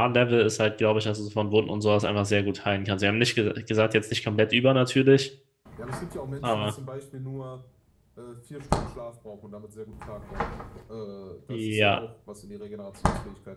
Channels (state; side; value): identical; both; correlation 1.00